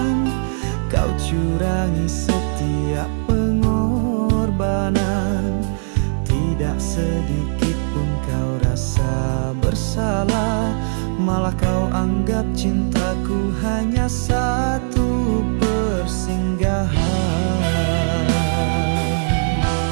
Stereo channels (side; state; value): left; silent; digital silence